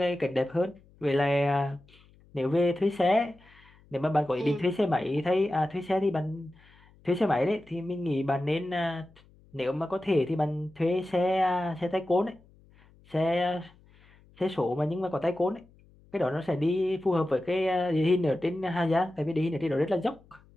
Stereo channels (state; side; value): noise; left; hum, 28 dB below the sound